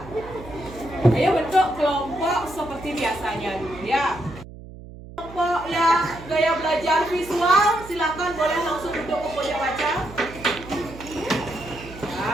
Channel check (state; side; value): noise; right; hum, 16 dB below the sound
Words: ayo bentuk kelompok seperti biasanya dulu ya. Kelompok yang gaya belajar visual, silakan boleh langsung duduk ke pojok baca.